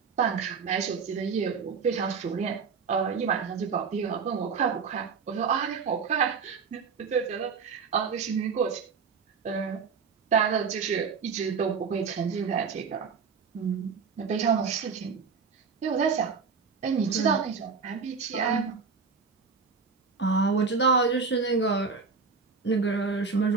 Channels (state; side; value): quieter; left; 5.4 dB